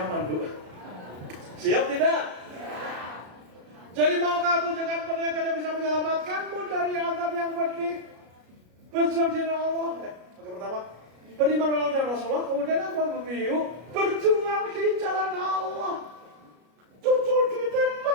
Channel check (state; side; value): late; left; 33 ms